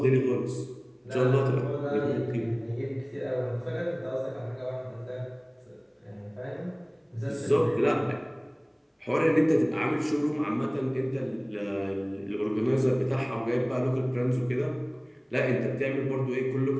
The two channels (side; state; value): both; identical; correlation 1.00